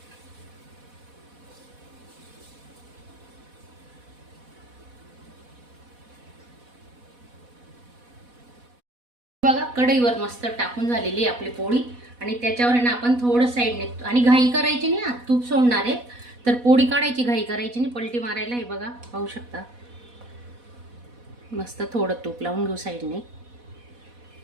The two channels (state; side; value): late; left; 4.1 ms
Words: बघा कढईवर मस्त टाकून झालेली आपली पोळी. आणि त्याच्यावर आहे ना आपण थोडं साईडने, आणि घाई करायची नाही, तूप सोडणार आहे तर पोळी काढायची, घाई करायची नाही, पलटी मारायला. हे बघा पाहू शकता. मस्त थोडं तूप लावून घेऊ साईडने.